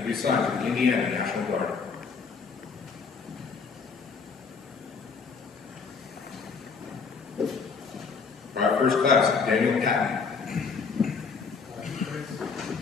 be assigned to the Indiana National Guard. Private First Class Daniel Patton.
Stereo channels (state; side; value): quieter; right; 5.2 dB